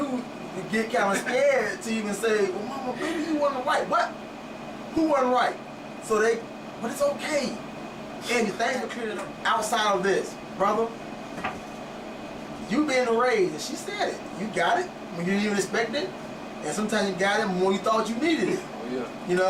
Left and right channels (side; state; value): both; identical; correlation 1.00